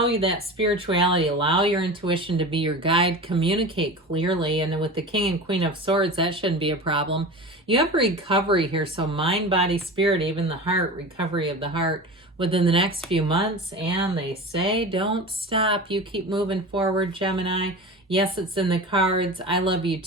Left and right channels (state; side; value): normal; both; correlation 0.31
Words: that spirituality, allow your intuition to be your guide, communicate clearly. And with the King and Queen of Swords, that shouldn't be a problem. You have recovery here. So mind, body, spirit, even the heart, recovery of the heart within the next few months. And they say, don't stop. You keep moving forward, Gemini. Yes, it's in the cards. I love you